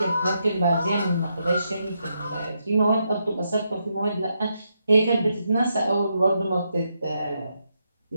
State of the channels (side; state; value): both; inverted; correlation -0.81